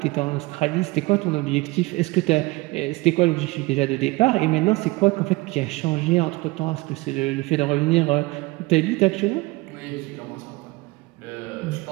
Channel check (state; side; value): quieter; left; 22.3 dB